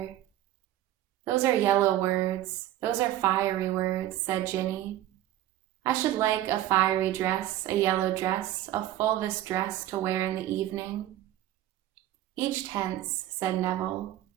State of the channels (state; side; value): quieter; left; 13.5 dB